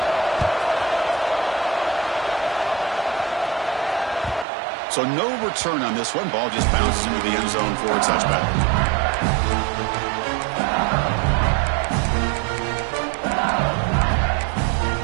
So no return on this one. Ball just bounces into the end zone for a touchback.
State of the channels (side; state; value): left; drops out; at 4.5 s